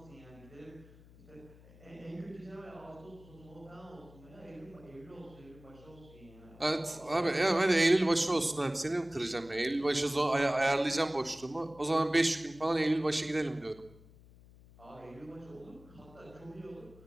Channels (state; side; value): noise; left; hum, 23 dB below the sound